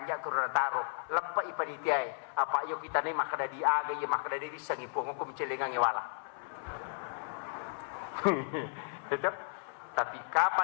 ko ronataro. Lepa ipanitiay. Apa ayo kita ni makada di aga. Ya makada di sangipong ko micelenga ngewala. Itu. Tapi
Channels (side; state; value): right; silent; 55 dB below the other